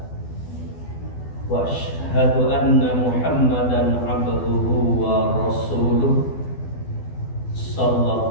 Wa asyhadu anna Muhammadan 'abduhu wa rasuluh.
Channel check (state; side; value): late; right; 12 ms